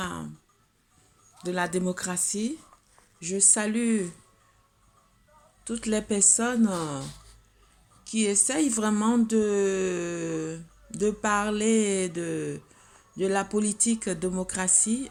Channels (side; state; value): both; identical; correlation 1.00